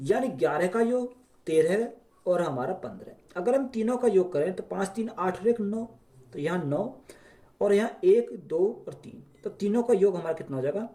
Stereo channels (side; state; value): both; identical; correlation 1.00